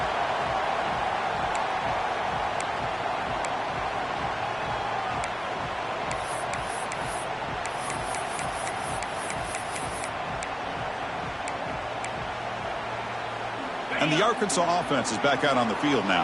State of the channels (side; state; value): both; identical; correlation 1.00